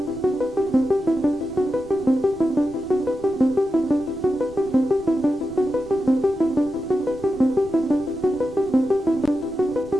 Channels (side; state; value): left; noise; rumble, 20 dB below the sound